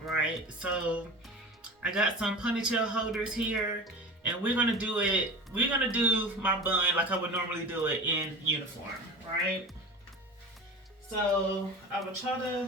right? So I got some ponytail holders here, and we're gonna do my bun like I would normally do it in uniform, right? So I would try to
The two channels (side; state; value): both; normal; correlation 0.34